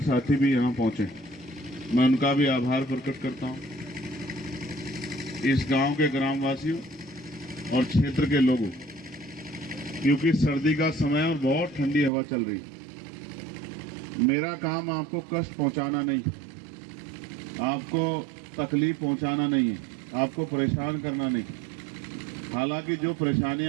साथी भी यहाँ पहुंचे, मैं उनका भी आभार प्रकट करता हूँ। इस गांव के ग्रामवासियों और क्षेत्र के लोगों, क्योंकि सर्दी का समय और बहुत ठंडी हवा चल रही है। मेरा काम आपको कष्ट पहुंचाना नहीं है, आपको तकलीफ पहुंचाना नहीं है, आपको परेशान करना नहीं है। हालांकि जो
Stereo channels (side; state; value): left; drops out; at 12.1 s